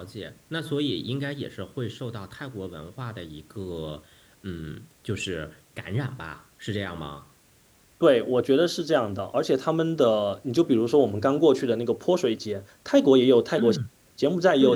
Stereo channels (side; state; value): both; identical; correlation 1.00